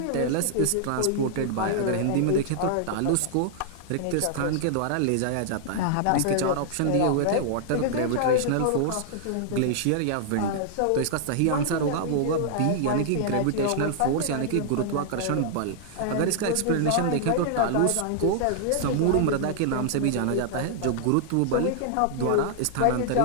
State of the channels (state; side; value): different; both; correlation -0.01